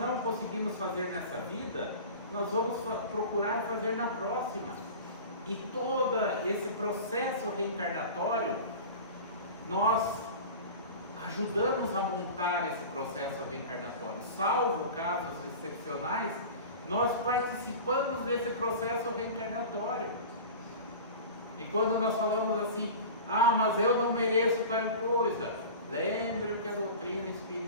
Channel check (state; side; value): inverted; both; correlation -0.35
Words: conseguimos fazer nessa vida, nós vamos procurar fazer na próxima. E todo esse processo reencarnatório, nós ajudamos a montar esse processo reencarnatório. Salvo casos excepcionais, nós participamos desse processo reencarnatório. E quando nós falamos assim: ah, mas eu não mereço tal coisa, lembre o que a doutrina